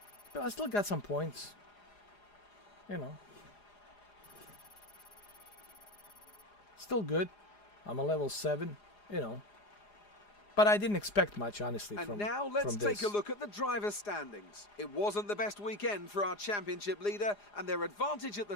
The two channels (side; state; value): right; late; 4.9 ms